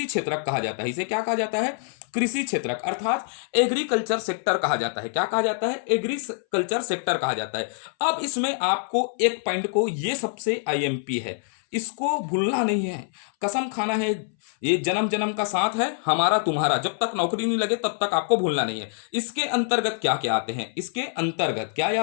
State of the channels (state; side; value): silent; right; 60 dB below the other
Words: क्षेत्रक कहा जाता है। इसे क्या कहा जाता है? कृषि क्षेत्रक, अर्थात एग्रीकल्चर सेक्टर कहा जाता है। क्या कहा जाता है? एग्रीकल्चर सेक्टर कहा जाता है। अब इसमें आपको एक पॉइंट को, ये सबसे आईएमपी है, इसको भूलना नहीं है, कसम खाना है, ये जन्म जन्म का साथ है हमारा तुम्हारा, जब तक नौकरी नहीं लगे तब तक आपको भूलना नहीं है। इसके अंतर्गत क्या क्या आते हैं? इसके अंतर्गत क्या